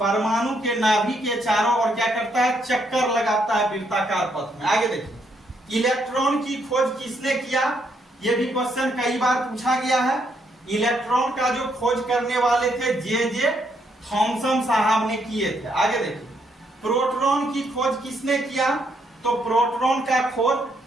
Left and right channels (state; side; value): normal; both; correlation 0.74